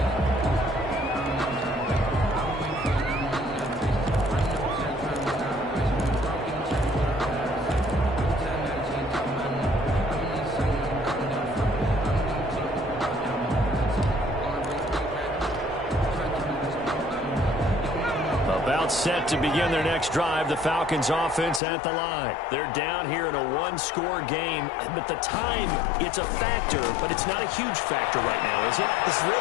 Set to begin their next drive. The Falcons offense at the line. They're down here in a 1-score game, but the time, it's a factor, but it's not a huge factor right now, is it? It's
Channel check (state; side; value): drops out; right; at 21.6 s